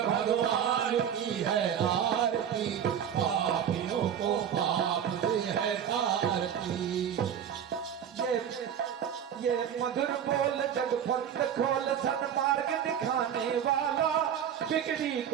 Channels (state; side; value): quieter; left; 8.9 dB